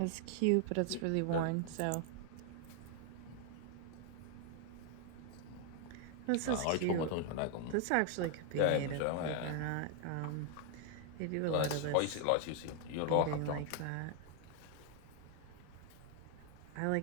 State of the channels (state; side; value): different; both; correlation 0.00